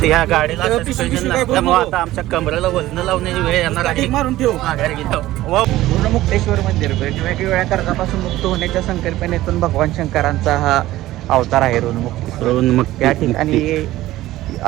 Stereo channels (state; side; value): quieter; left; 15.9 dB